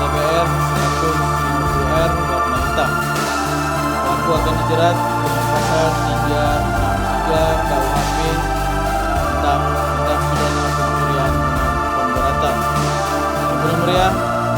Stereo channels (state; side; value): identical; both; correlation 1.00